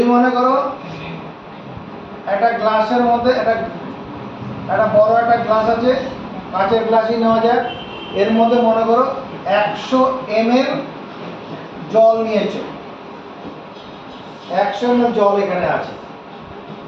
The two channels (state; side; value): identical; both; correlation 1.00